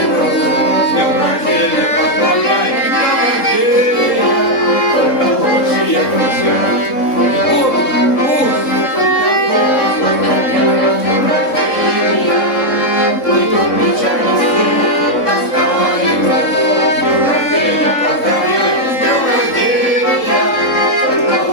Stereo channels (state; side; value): late; right; 3.7 ms